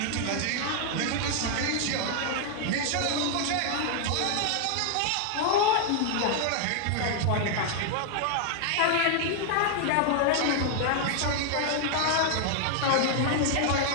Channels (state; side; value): different; both; correlation 0.00